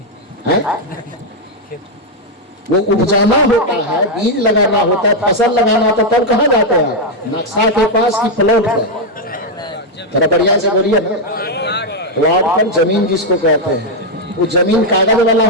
है? वो उपजाना होता है, बीज लगाना होता है, फसल लगाना होता है, तब कहाँ जाते हैं? नक्शा के पास की प्लॉट पर। थोड़ा बढ़िया से बोलिए ना, प्लॉट पर जमीन जिसको कहते हैं, वो जमीन कागज वाला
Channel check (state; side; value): normal; both; correlation 0.00